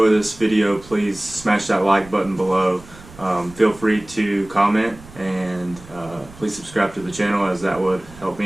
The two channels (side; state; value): right; noise; rumble, 20 dB below the sound